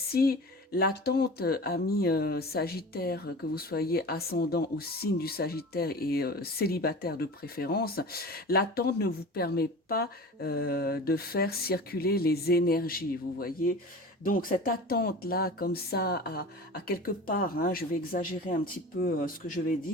l'attente, ami Sagittaire, que vous soyez ascendant ou signe du Sagittaire et célibataire de préférence, l'attente ne vous permet pas de faire circuler les énergies, vous voyez. Donc cette attente-là, comme ça, à quelque part, hein, je vais exagérer un petit peu ce que je vais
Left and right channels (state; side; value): normal; both; correlation 0.35